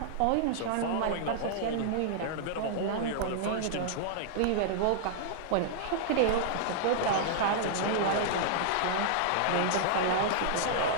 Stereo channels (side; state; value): both; different; correlation -0.01